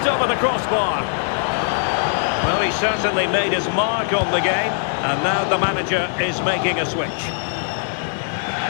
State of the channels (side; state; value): right; silent; digital silence